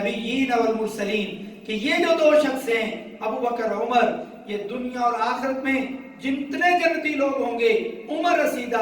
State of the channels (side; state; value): both; identical; correlation 1.00